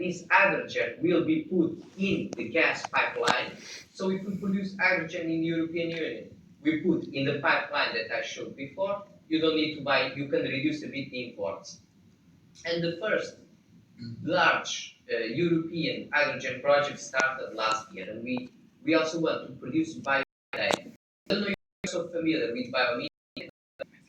hydrogen will be put in the gas pipeline. So if we produce hydrogen in the European Union, we put in the pipeline that I showed before, you don't need to buy, you can reduce a bit the imports. And the first large European hydrogen project started last year, and we also want to produce biomethane. I don't know if you're so familiar with biomethane.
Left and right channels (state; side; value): identical; both; correlation 1.00